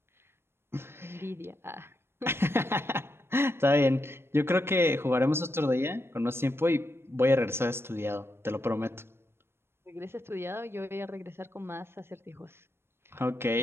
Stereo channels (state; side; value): late; left; 0.12 ms